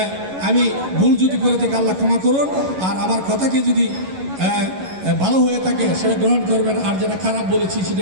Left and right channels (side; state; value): left; late; 11 ms